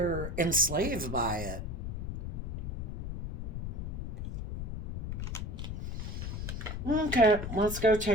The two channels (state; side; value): noise; left; rumble, 4 dB below the sound